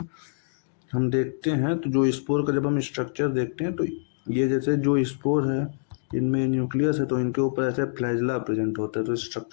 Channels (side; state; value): right; silent; digital silence